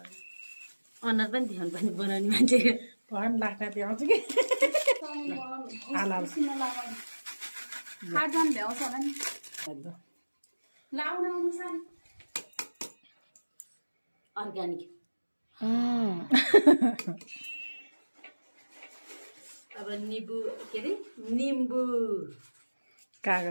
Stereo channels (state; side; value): inverted; both; correlation -1.00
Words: अनुहार पनि ध्यान पनि बनाउने मान्छे भन लाग्दा त्यो आउँछ कि अर्ग्यानिक अब निम्बु के अरे निम्बु